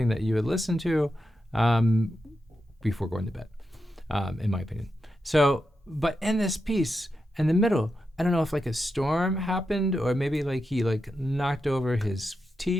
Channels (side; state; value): both; normal; correlation 0.87